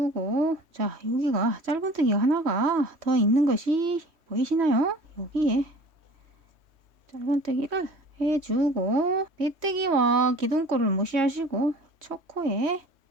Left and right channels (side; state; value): left; late; 3.1 ms